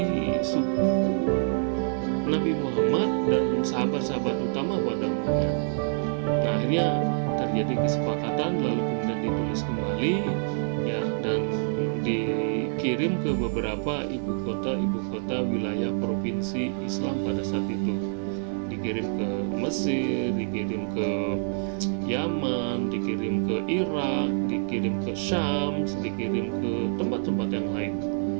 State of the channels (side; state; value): left; silent; digital silence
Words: suku Nabi Muhammad dan sahabat-sahabat utama pada umumnya. Nah, akhirnya terjadi kesepakatan, lalu kemudian ditulis kembali ya, dan dikirim ke beberapa ibu kota wilayah provinsi Islam pada saat itu. Dikirim ke Mesir, dikirim ke Yaman, dikirim ke Irak, dikirim ke Syam, dikirim ke tempat-tempat yang lain.